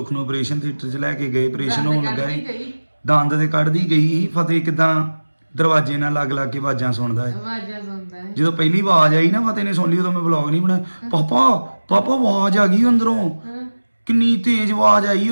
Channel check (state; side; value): inverted; both; correlation -1.00